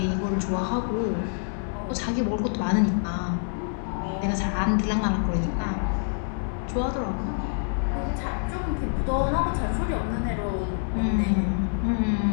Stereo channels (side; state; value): right; silent; 59 dB below the other